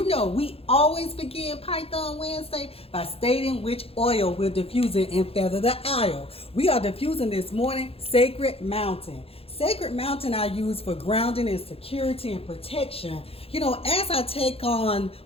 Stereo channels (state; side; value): late; right; 0.28 ms